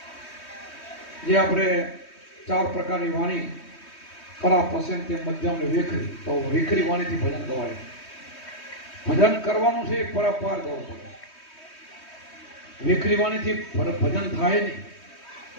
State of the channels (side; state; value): right; late; 3.2 ms